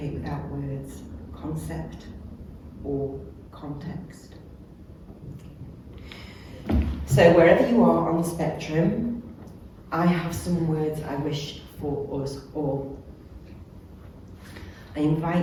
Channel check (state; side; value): identical; both; correlation 1.00